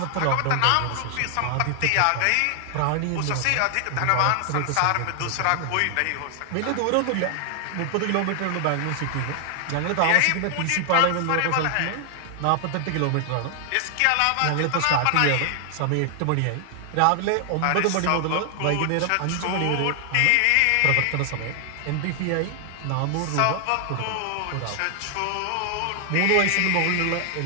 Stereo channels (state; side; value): different; both; correlation 0.00